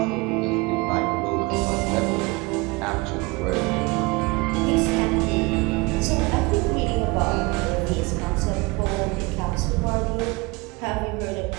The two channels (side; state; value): left; quieter; 25.2 dB